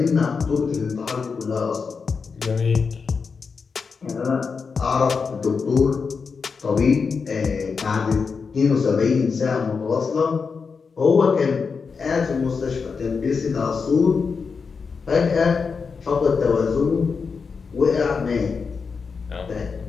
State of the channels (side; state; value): right; quieter; 5.3 dB